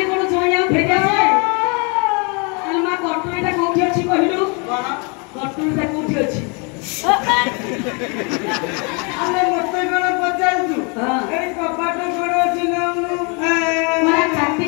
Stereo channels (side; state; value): right; quieter; 33.2 dB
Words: कोन जोया फेरि आसे अरे मा कटुरीटा कोठी अछि कहिलु कटुरीटा कोठी अछि ଆମେ ମତେ କଣ ପଚାରୁଛୁ हां ଏଇ କବାଟ କୋଡ ଅଛି ନା मोरा